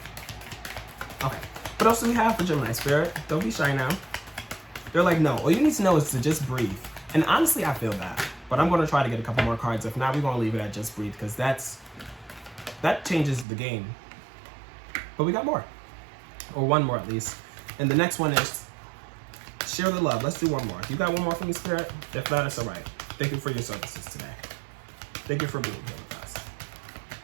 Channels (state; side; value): drops out; left; at 13.5 s